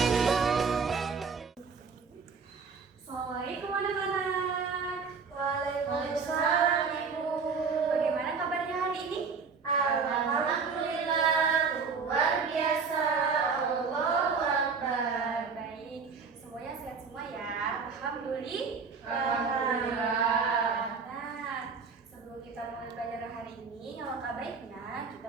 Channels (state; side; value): quieter; left; 5.3 dB